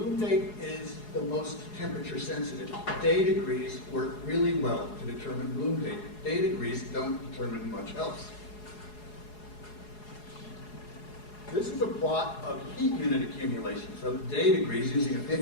date is the most temperature sensitive. Day degrees work really well to determine bloom date. Day degrees don't determine much else. This is a plot of heat unit accumulation. So day degrees using a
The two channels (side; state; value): right; late; 4.8 ms